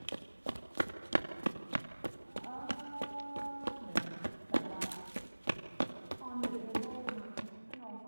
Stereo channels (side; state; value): both; inverted; correlation -1.00